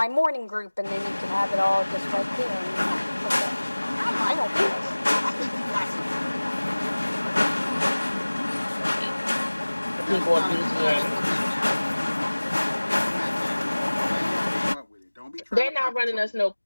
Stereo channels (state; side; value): inverted; both; correlation -1.00